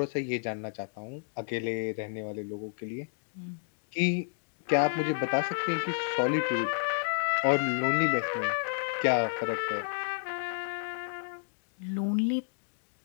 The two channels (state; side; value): silent; right; digital silence